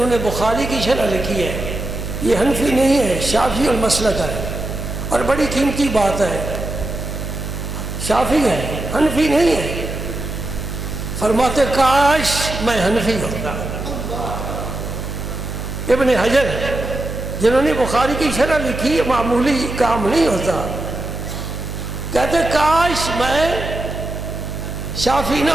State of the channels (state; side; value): noise; right; hum, 5 dB below the sound